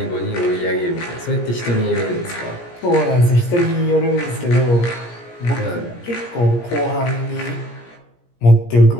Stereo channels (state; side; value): late; right; 17 ms